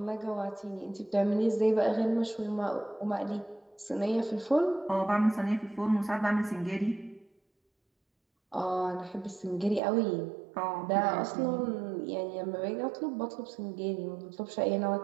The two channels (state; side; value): drops out; left; at 9.8 s